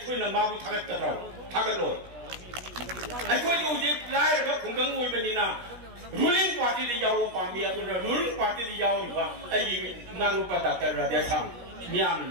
na mabu thagat kadra thagalo aikoi ju je lai ra khunggang oi bani na ruling party de yawo pami adu ruling party de yawo ba ai ngang pa ta ra de sam miam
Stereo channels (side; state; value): left; late; 16 ms